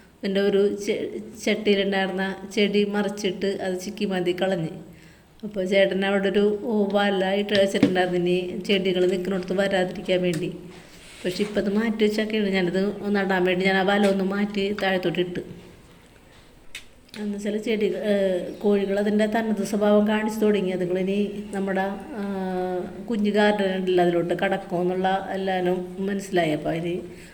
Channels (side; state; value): both; identical; correlation 1.00